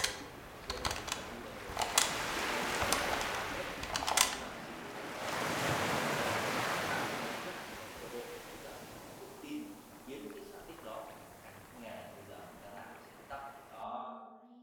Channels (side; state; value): both; identical; correlation 1.00